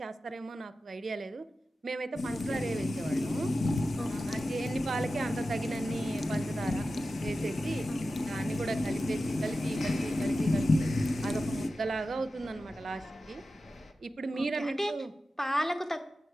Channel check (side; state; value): both; normal; correlation 0.93